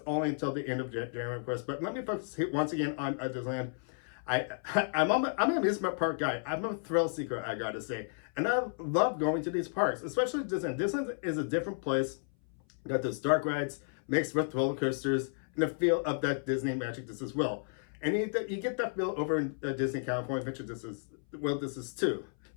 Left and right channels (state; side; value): silent; right; 56 dB below the other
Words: only until the end of January, of course. But let me focus once again on Disneyland. I'm an amusement park guy. I'm a thrill seeker, I gotta say. And I love going to these parks, especially Disneyland. Disneyland is a different place. Got those dark rides mixed with roller coasters and the feel of that Disney magic just as well. And you get that feel over in Disney California Adventure. This is too.